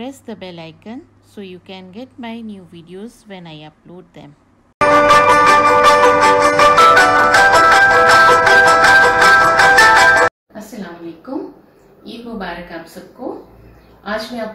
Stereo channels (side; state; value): both; identical; correlation 1.00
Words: the bell icon so you can get my new videos when I upload them. अस्सलाम वालेकुम, ईद मुबारक आप सबको। आज मैं